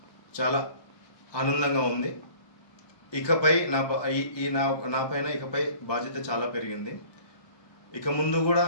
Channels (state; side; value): late; right; 1.2 ms